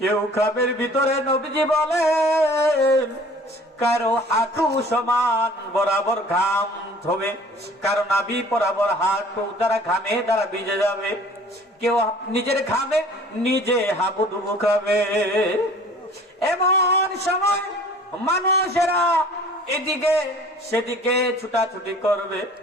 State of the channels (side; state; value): both; normal; correlation 0.49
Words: খাবের ভিতরে নবীজি বলেন কারো হাঁটু সমান বরাবর ঘাম হবে, কারো নাভি বরাবর হাঁটু দ্বারা ঘামে দ্বারা ভিজে যাবে, কেউ নিজের ঘামে নিজে হাবুডুবু খাবে। এমন সময় মানুষেরা এদিকে সেদিকে ছুটাছুটি করবে,